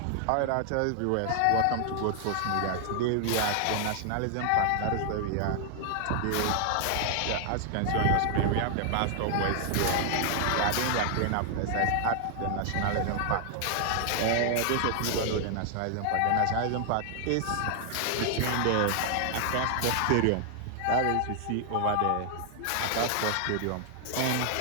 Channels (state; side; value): different; both; correlation 0.00